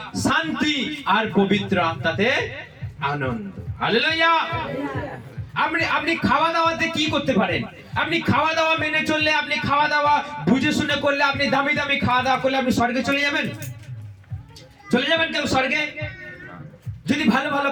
শান্তি আর পবিত্র আত্মাতে আনন্দ। হালেলুয়া। আপনি খাওয়া দাওয়াতে কি করতে পারেন? আপনি খাওয়া দাওয়া মেনে চললে, আপনি খাওয়া দাওয়া বুঝে শুনে করলে, আপনি দামি দামি খাওয়া দাওয়া করলে আপনি স্বর্গে চলে যাবেন? চলে যাবেন কেউ স্বর্গে? যদি ভালো ভালো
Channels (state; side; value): identical; both; correlation 1.00